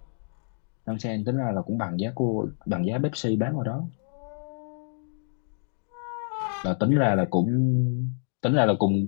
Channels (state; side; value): silent; right; digital silence